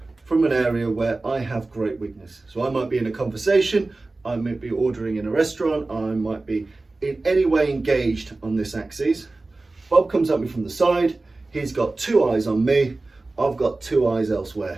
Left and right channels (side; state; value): left; quieter; 3.3 dB